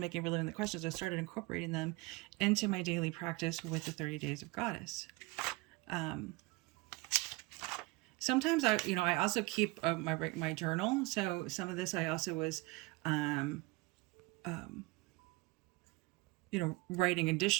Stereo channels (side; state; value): left; quieter; 23.1 dB